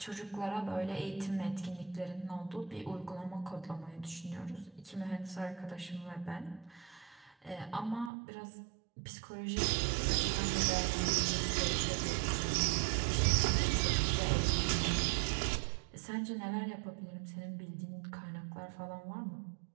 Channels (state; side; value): drops out; left; at 8.1 s